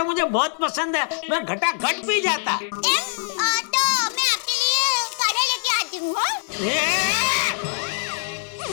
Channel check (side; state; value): right; silent; 61 dB below the other